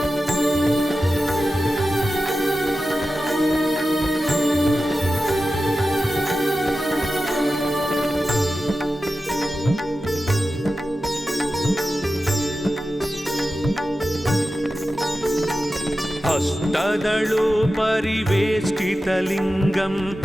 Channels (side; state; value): both; normal; correlation 0.93